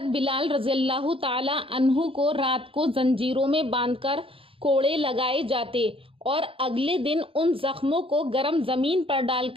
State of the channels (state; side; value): late; left; 0.26 ms